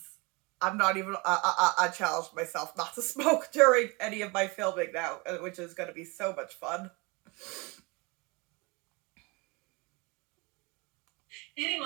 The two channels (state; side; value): quieter; left; 26.8 dB